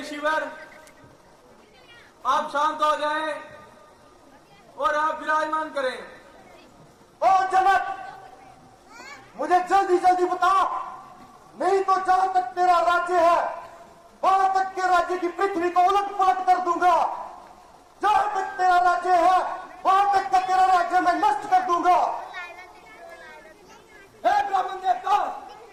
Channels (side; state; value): both; identical; correlation 1.00